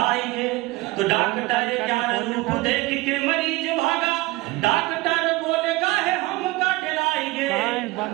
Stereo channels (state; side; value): quieter; left; 20.5 dB